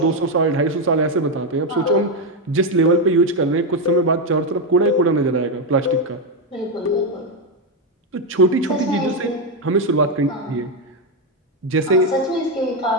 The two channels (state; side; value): normal; both; correlation 0.05